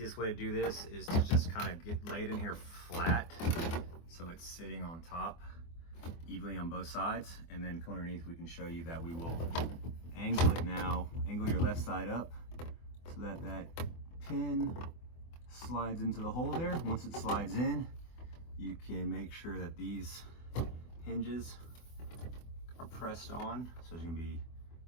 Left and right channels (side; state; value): right; late; 24 ms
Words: way to do this is to just kind of lay it in here flat, so it's sitting on top evenly on both sides, and then come underneath. We can show you that we will angle it now. Angle your left side up so that that pin slides into the hole there. Once it slides in, you can make sure that these hinges are pressed on. So there's gonna be